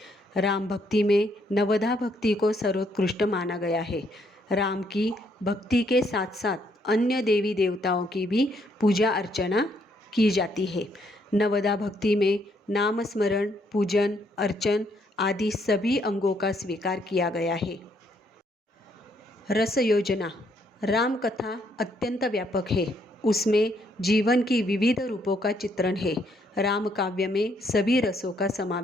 राम भक्ति में नवधा भक्ति को सर्वोत्कृष्ट माना गया है। राम की भक्ति के साथ साथ अन्य देवी देवताओं की भी पूजा अर्चना की जाती है। नवधा भक्ति में नाम स्मरण, पूजन, अर्चन आदि सभी अंगों का स्वीकार किया गया है। रस योजना। राम कथा अत्यंत व्यापक है। उसमें जीवन की विविध रूपों का चित्रण है। राम काव्य में सभी रसों का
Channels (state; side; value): normal; both; correlation 0.71